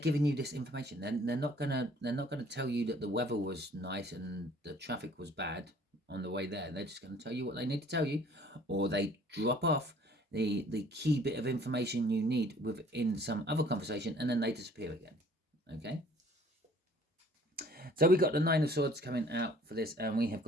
you this information. They're not gonna tell you that the weather was nice and the traffic was bad on the way there. They're just going to tell you what they need to tell you, or they drop off the key bit of information you need within some other conversation, and then they disappear again. Okay, so we got the Nine of Swords coming out for this, and we have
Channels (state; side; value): normal; both; correlation 0.55